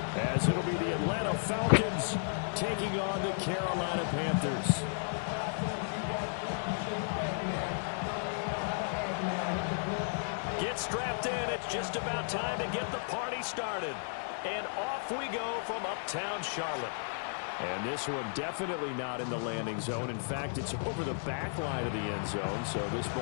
as it'll be the Atlanta Falcons taking on the Carolina Panthers. Get strapped in. It's just about time to get the party started. And off we go from uptown Charlotte. And this one definitely not in the landing zone. In fact, it's over the back line of the end zone. So this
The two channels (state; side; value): silent; right; digital silence